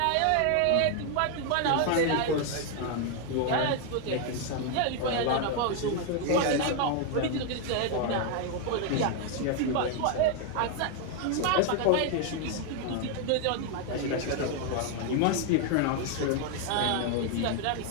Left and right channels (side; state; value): both; different; correlation 0.00